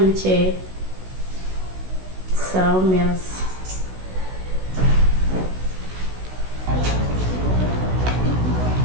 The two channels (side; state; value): left; late; 16 ms